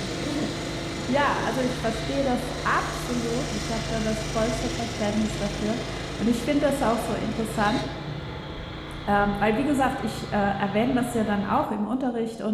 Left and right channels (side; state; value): both; identical; correlation 1.00